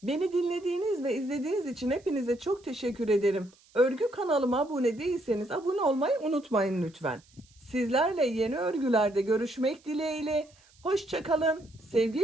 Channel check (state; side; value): noise; right; hiss, 30 dB below the sound